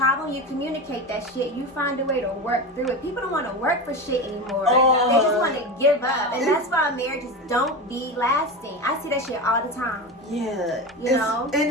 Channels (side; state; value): both; normal; correlation 0.23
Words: you communicate that shit. You find a way to work through it. People don't want to work for shit anymore. They just want to give up, and that's why marriages don't be lasting. I see that shit all the time. Yeah. You know?